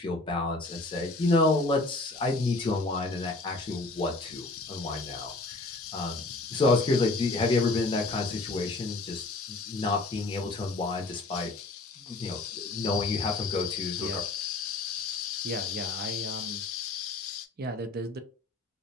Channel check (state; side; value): quieter; right; 3.1 dB